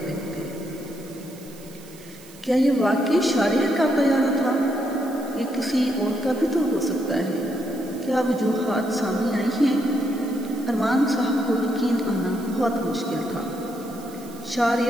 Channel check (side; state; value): right; noise; hiss, 22 dB below the sound